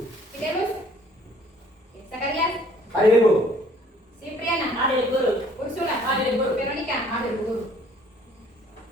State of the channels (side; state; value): both; normal; correlation 0.58